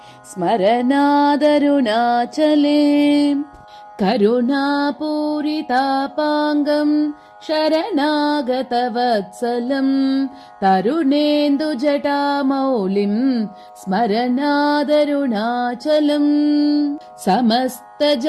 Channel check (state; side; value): identical; both; correlation 1.00